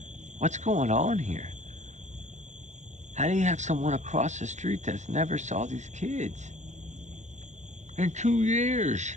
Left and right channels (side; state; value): left; late; 0.34 ms